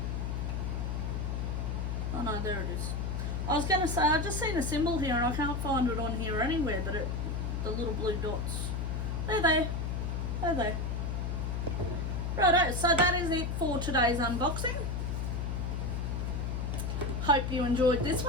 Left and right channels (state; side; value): noise; left; hum, 1 dB below the sound